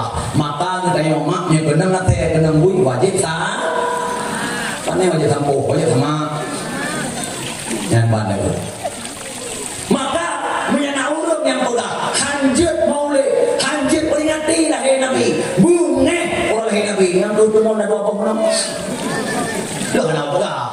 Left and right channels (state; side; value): identical; both; correlation 1.00